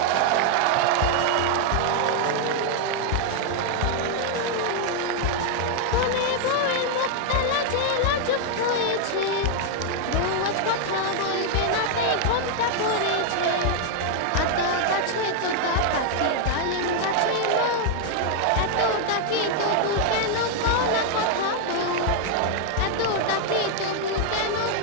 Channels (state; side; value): different; both; correlation 0.00